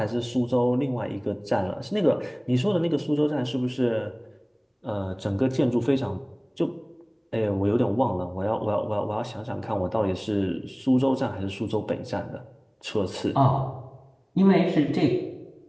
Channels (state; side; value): identical; both; correlation 1.00